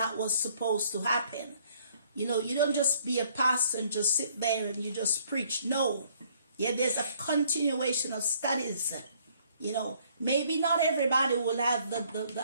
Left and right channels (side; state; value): both; inverted; correlation -0.63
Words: was supposed to happen. You know, you don't just be a pastor and just sit there and you just preach. No. Yeah, there's a continuation of studies. You know, maybe not everybody will have